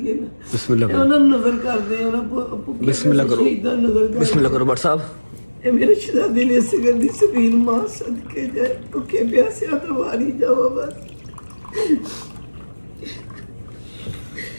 ਨਾ। ਬਿਸਮਿਲ੍ਲਾ ਕਰੋ, ਉਹਨਾਂ ਨੂੰ ਨਜ਼ਰ ਕਰਦੇ, ਉਹਨਾਂ ਬਿਸਮਿਲ੍ਲਾ ਕਰੋ, ਸ਼ਹੀਦਾਂ ਨਜ਼ਰ ਕਰਦੇ। ਬਿਸਮਿਲ੍ਲਾ ਕਰੋ ਬਟ ਸਾਹਿਬ। ਇਹ ਮੇਰੇ ਸ਼ਹਿਜ਼ਾਦੇ ਨੇ ਇਸ ਗੱਲ ਦੀ ਸਬੀਲ ਮਾਂ ਸਦਕੇ ਜਾਏ ਭੁੱਖੇ ਪਿਆਸਿਆਂ ਤੋਂ ਵਾਰੀ ਜਾਵਾ ਬਸ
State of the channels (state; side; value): inverted; both; correlation -1.00